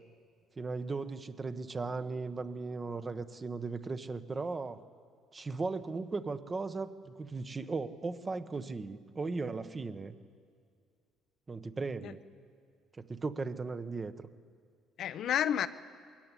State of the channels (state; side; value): normal; both; correlation 0.78